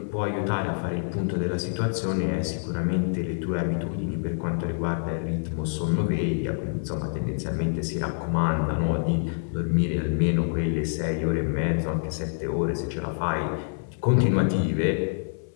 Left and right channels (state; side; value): silent; right; digital silence